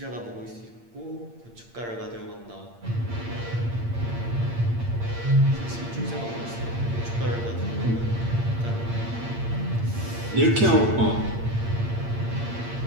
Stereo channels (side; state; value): left; late; 8.7 ms